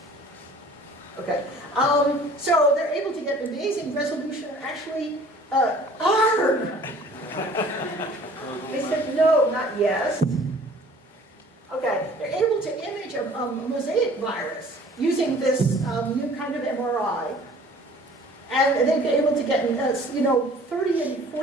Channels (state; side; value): normal; both; correlation 0.51